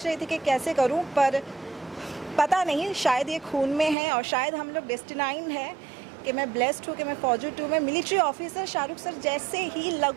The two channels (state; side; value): drops out; left; at 4.0 s